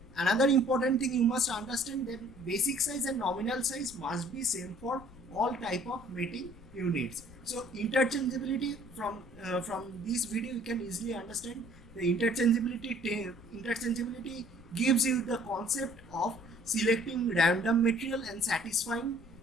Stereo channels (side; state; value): left; noise; rumble, 20 dB below the sound